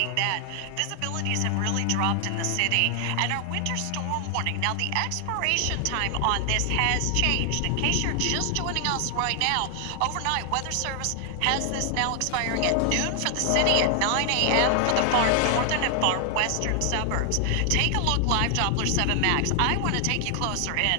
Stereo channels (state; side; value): different; both; correlation 0.00